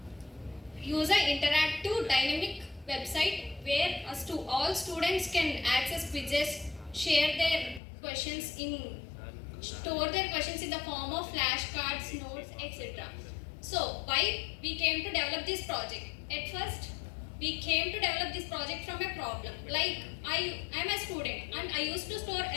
interactive dynamic website where all students can access quizzes, share their questions in store their questions in the form of flashcards, notes, etc. So, why we came to develop this project? At first, we came to develop this project from a problem. Like, I am a student and I used to store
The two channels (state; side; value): drops out; right; at 7.8 s